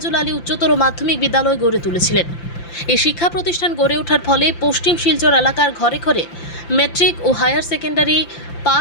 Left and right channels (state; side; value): late; right; 5.8 ms